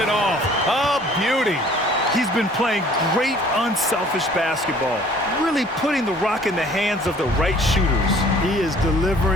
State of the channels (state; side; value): normal; both; correlation 0.54